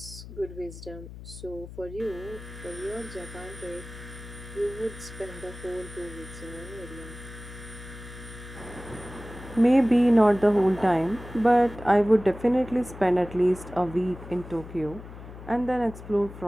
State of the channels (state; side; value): noise; left; hum, 14 dB below the sound